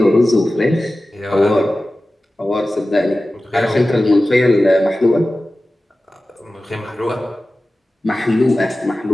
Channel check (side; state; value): both; normal; correlation 0.95